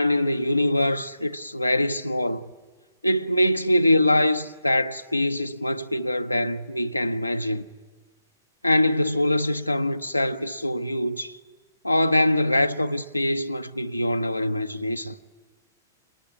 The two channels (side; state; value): both; inverted; correlation -0.91